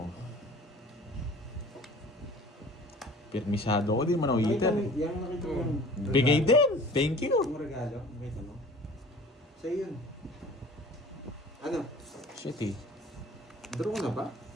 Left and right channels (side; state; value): both; normal; correlation 0.45